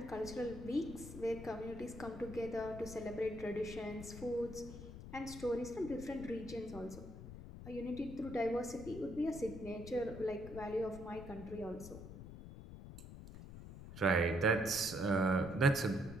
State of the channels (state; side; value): noise; left; rumble, 12 dB below the sound